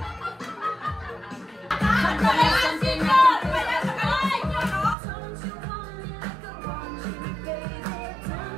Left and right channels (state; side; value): drops out; left; at 5.0 s